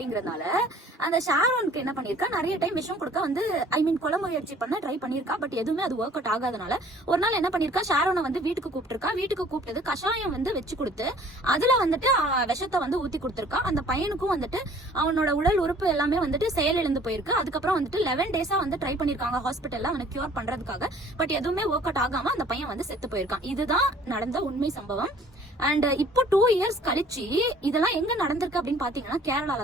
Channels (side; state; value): both; normal; correlation 0.54